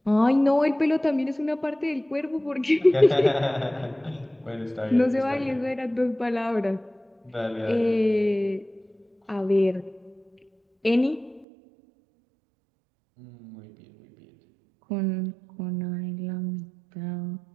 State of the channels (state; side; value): drops out; left; at 11.5 s